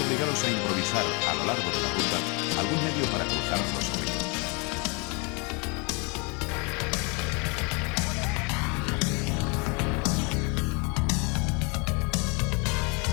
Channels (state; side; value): quieter; right; 31.5 dB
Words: a improvisar a lo largo de la ruta algún medio para cruzar los ríos.